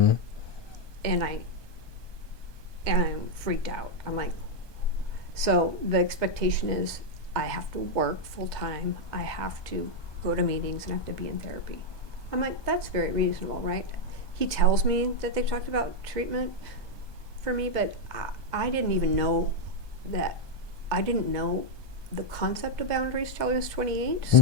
And I'm freaked out. I'm like, so the expectation is I have to work full time. I have to go to meetings and have to be in therapy. I'm like, that's very reasonable, right? He tells me that they've talked about treatment for me, but I didn't even know that. I didn't know the concept of boundaries till I was 28.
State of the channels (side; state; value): right; late; 1.2 ms